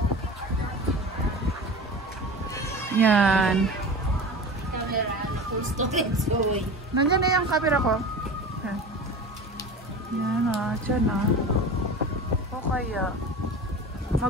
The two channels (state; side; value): normal; both; correlation 0.33